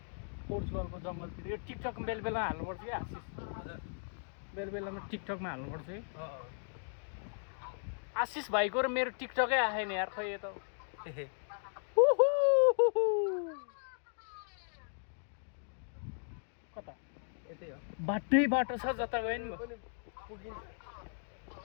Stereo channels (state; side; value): silent; right; digital silence